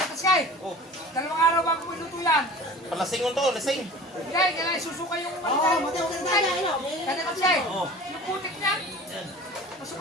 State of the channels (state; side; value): normal; both; correlation 0.41